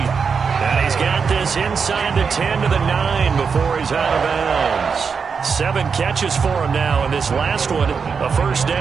he's got this inside the 10 to the 9 before he's out of bounds. 7 catches for him now, and this last one, a first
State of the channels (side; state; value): left; quieter; 5.8 dB